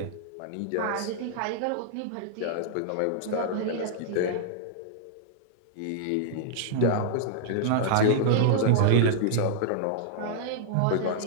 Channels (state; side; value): different; both; correlation -0.02